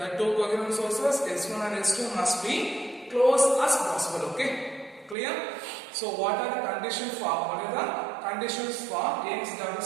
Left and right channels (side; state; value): left; drops out; at 5.2 s